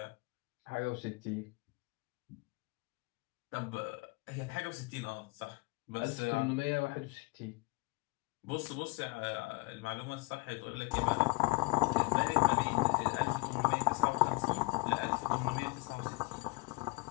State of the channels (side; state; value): right; quieter; 25.1 dB